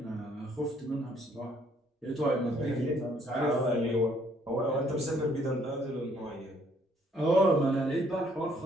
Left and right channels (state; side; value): normal; both; correlation 0.65